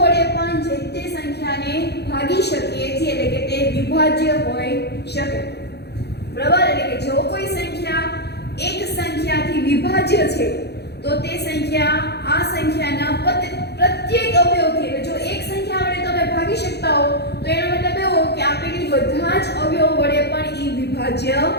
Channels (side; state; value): right; late; 0.48 ms